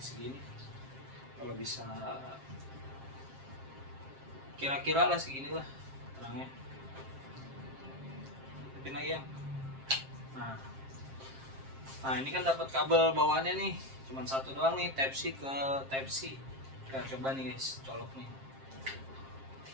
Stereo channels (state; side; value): late; left; 7.5 ms